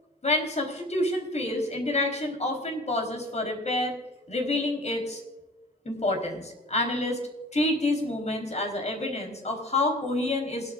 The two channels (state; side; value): normal; both; correlation 0.44